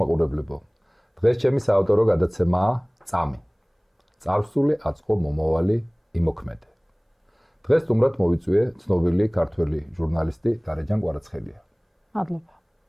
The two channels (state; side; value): identical; both; correlation 1.00